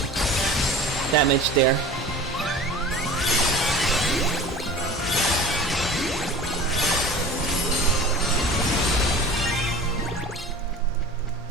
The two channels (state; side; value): normal; both; correlation 0.39